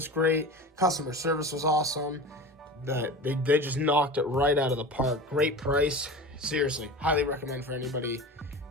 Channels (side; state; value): both; normal; correlation 0.32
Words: great. Customer service was awesome. They just knocked it right out of the park. Great price. Seriously, highly recommend for anybody